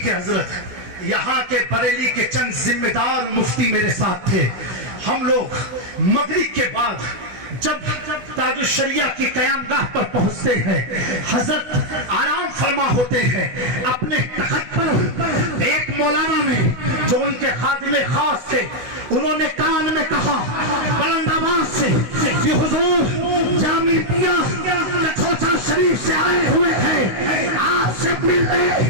ہے حضرت. یہاں کے بریلی کے چند ذمہ دار مفتی میرے ساتھ تھے. ہم لوگ مغرب کے بعد جب تاج الشریعہ کی قیام گاہ پر پہنچتے ہیں، حضرت آرام فرما ہوتے ہیں اپنے تخت پر. ایک مولانا نے جو ان کے خادم خاص تھے، انہوں نے کان میں کہا بلند آواز سے کہ حضور جامعہ کٹھوچا شریف سے آئے ہوئے ہیں، آپ سے ملنے.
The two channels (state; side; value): late; left; 16 ms